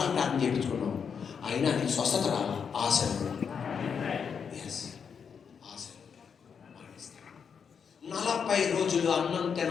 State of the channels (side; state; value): right; quieter; 6.6 dB